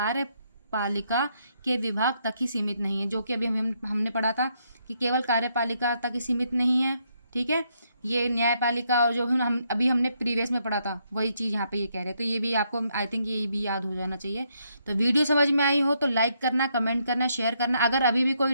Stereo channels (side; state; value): both; inverted; correlation -0.75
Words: के विभाग तक ही सीमित नहीं है, जो कि अभी हमने पढ़ा था कि केवल कार्यपालिका तक ही सीमित नहीं है, ठीक है। ये न्यायपालिका और जो हमने प्रीवियस में पढ़ा था वही चीज़ यहाँ पे ये कह रहे हैं। तो ये भी आपको आई थिंक ये भी याद हो जाना चाहिए। तो वीडियो समझ में आई हो तो लाइक करना, कमेंट करना, शेयर करना। अगर अभी भी कोई